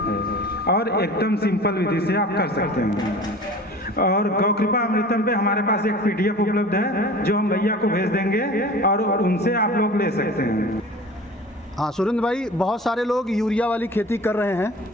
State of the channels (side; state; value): both; normal; correlation 0.40